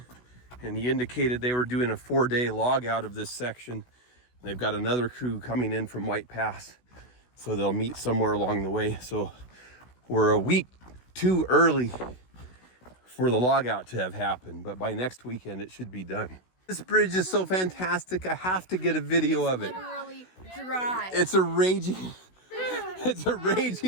and he indicated they were doing a 4-day log out of this section. They've got another crew coming in from White Pass, so they'll meet somewhere along the way. So we're a week too early for the log out to have happened, but by next weekend it should be done. This bridge is so fantastic. I have to get a video of it. Literally dry. It's a raging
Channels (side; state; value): right; late; 16 ms